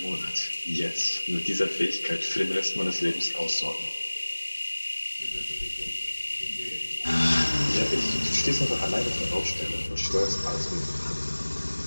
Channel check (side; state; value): both; inverted; correlation -1.00